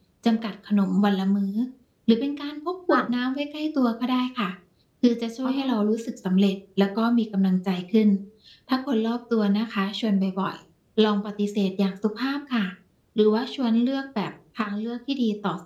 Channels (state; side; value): identical; both; correlation 1.00